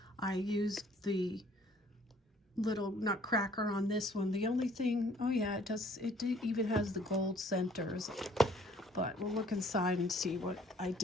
I used the little nutcracker on this one. The only thing, oh yeah, it even has the gold centers. But we'll look inside and see what I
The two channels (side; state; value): both; normal; correlation 0.58